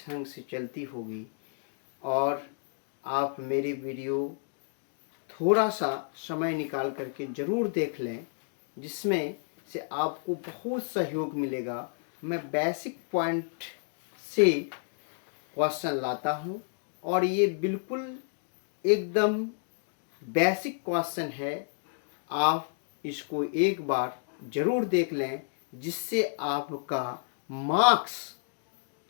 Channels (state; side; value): silent; right; digital silence